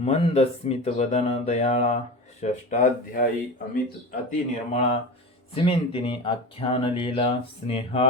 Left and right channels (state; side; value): normal; both; correlation 0.29